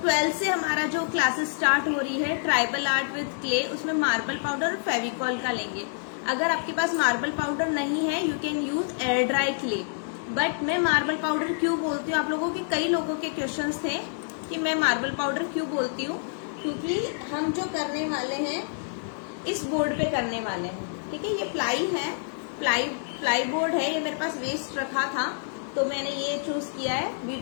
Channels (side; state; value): right; silent; digital silence